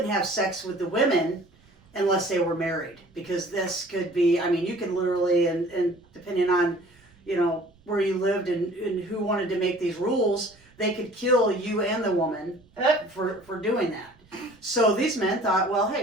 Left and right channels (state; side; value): noise; right; rumble, 30 dB below the sound